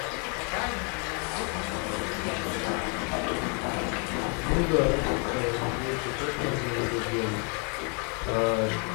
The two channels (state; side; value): quieter; right; 37.9 dB